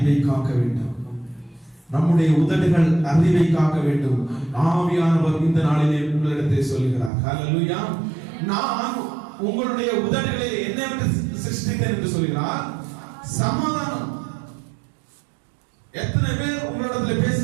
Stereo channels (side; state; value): left; drops out; at 7.1 s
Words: காக்க வேண்டும். நம்முடைய உதடுகள் அறிவை காக்க வேண்டும். ஆவியானவர் இந்த நாளிலே உங்களிடத்தை சொல்லுகிறார். ஹalleluya. நான் உங்களுடைய உதடுகளை என்னவென்று சிருஷ்டித்தேன் என்று சொல்கிறார்? சமாதானம். எத்தனை பேர் உங்களிடத்தில்